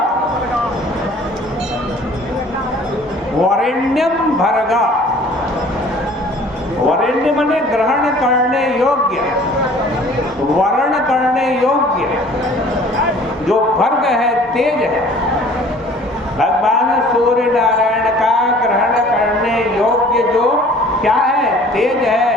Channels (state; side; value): normal; both; correlation 0.51